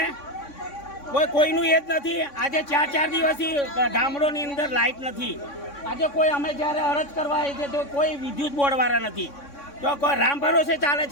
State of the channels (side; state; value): right; late; 3.6 ms